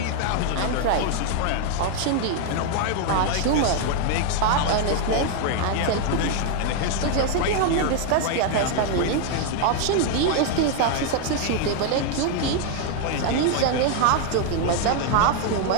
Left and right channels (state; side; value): different; both; correlation 0.00